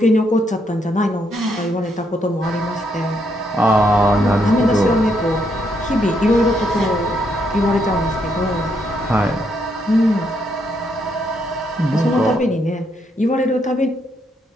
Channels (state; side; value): normal; both; correlation 0.76